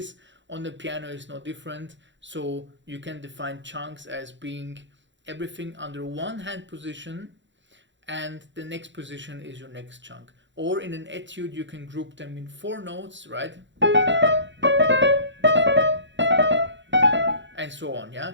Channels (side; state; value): left; late; 0.54 ms